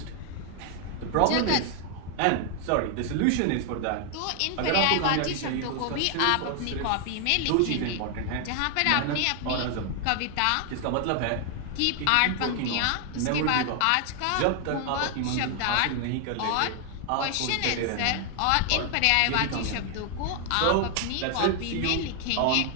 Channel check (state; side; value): different; both; correlation 0.00